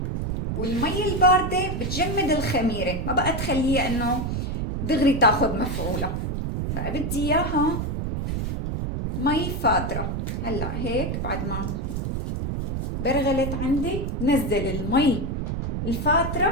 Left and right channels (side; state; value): right; noise; rumble, 2 dB below the sound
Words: والمي الباردة بتجمد الخميرة، ما بقى تخليها انه دغري تاخد مفعولة. بقى بدي اياها مي فاترة. هلا هيك بعد ما برغلت عندي نزل المي